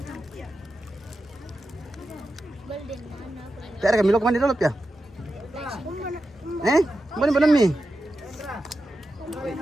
Tera kami lo kumande dolo ya. Mana mi?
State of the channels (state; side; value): normal; both; correlation 0.90